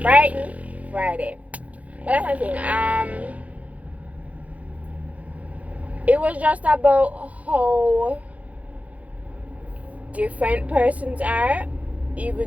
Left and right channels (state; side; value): late; left; 0.068 ms